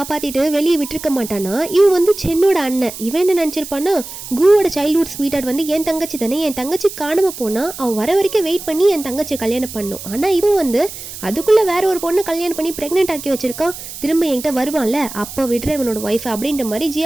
வெளியே விட்டுருக்க மாட்டானா, இவன் வந்து சென்னோட அண்ணன். இவன் என்ன நினச்சிருப்பான்னா, குவோட சைல்ட்ஹுட் ஸ்வீட்டார்ட் வந்து என் தங்கச்சி தானே, என் தங்கச்சி காணாமல் போனால் அவள் வர வரைக்கும் வெயிட் பண்ணி என் தங்கச்சியை கல்யாணம் பண்ணும். ஆனால் இவன் வந்து அதுக்குள்ளே வேற ஒரு பொண்ணை கல்யாணம் பண்ணி ப்ரெக்னென்ட் ஆக்கி வச்சிருக்கான். திரும்ப என்கிட்ட வருவான்ல, அப்போ விடுற இவனோட ஒய்ஃப் அப்படின்ற மாதிரி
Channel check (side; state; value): right; noise; hiss, 11 dB below the sound